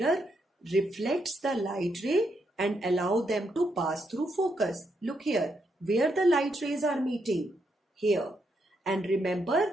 reflects the light ray and allow them to pass through focus. Look here, where the light rays are meeting, here. And remember,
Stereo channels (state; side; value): normal; both; correlation 0.79